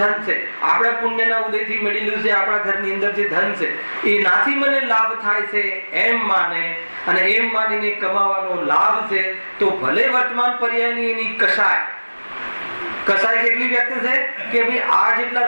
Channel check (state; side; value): inverted; both; correlation -1.00